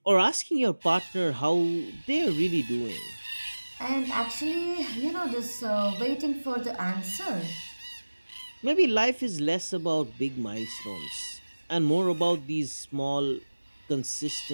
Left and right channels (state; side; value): inverted; both; correlation -1.00